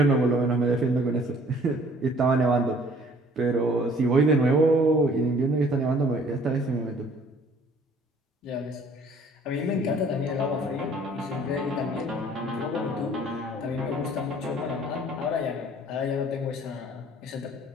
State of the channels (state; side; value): normal; both; correlation 0.55